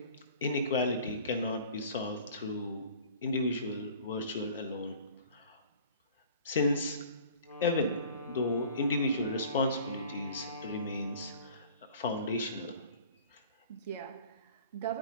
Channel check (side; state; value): both; inverted; correlation -0.47